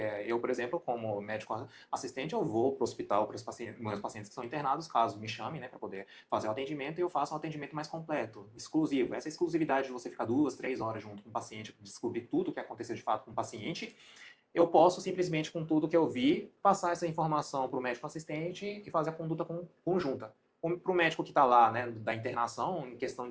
eu, por exemplo, como médico assistente, eu vou para o hospital para os meus pacientes que são internados, caso me chamem, né, para poder fazer o atendimento e eu faço um atendimento mais completo, exclusivo. Essa exclusividade de você ficar 2, 3 horas junto com o paciente, descobrir tudo o que aconteceu de fato com o paciente, eu posso simplesmente, com tudo que eu vi, passar essa informação para o médico assistente e fazer a conduta conjunta. Para o médico que está lá, né, da internação, em questão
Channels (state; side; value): identical; both; correlation 1.00